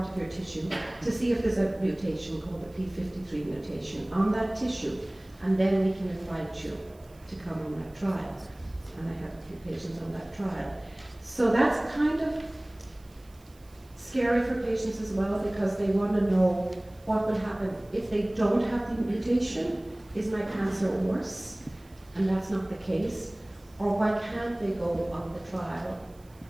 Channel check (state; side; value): noise; right; hiss, 29 dB below the sound